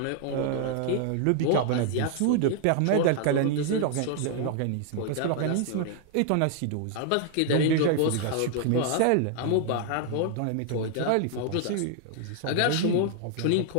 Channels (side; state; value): both; different; correlation 0.00